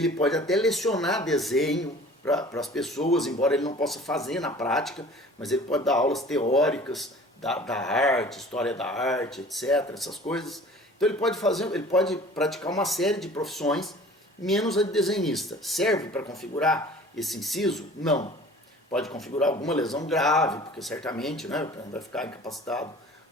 pode até lecionar desenho para as pessoas, embora ele não possa fazer na prática, mas ele pode dar aulas teóricas da arte, história da arte, etc., essas coisas. Então ele pode praticar uma série de profissões, menos a de desenhista. Serve para configurar esse inciso? Não. Pode configurar alguma lesão grave, porque certamente, né, vai ficar incapacitado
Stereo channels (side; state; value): both; normal; correlation 0.46